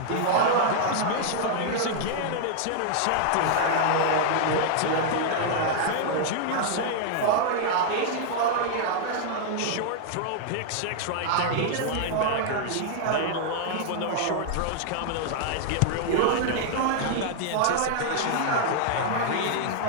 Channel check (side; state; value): both; different; correlation -0.01